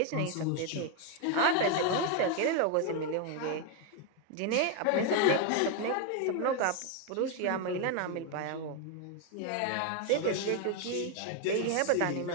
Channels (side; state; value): both; different; correlation 0.01